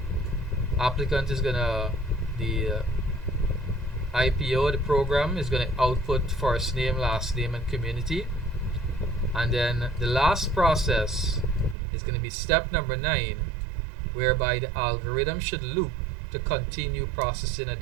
applicant is going to, the IPO, the program, is going to output first name, last name, and community. And then the last process is going to be step number 9, whereby the algorithm should loop to continue processing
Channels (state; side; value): drops out; left; at 11.8 s